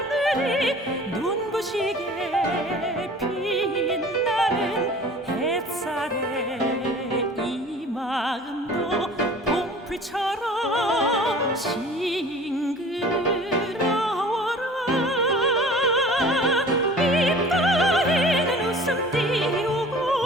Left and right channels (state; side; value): normal; both; correlation 0.45